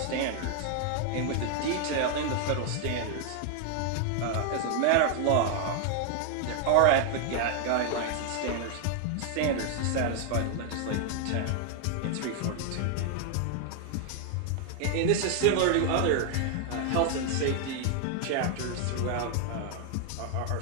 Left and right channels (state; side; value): different; both; correlation 0.00